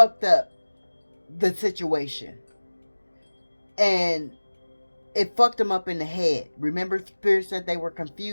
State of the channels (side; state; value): both; inverted; correlation -1.00